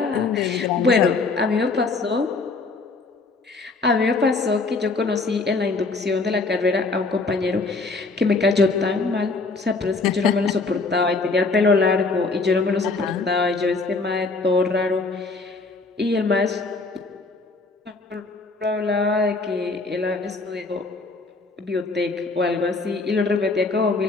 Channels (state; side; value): quieter; right; 3.8 dB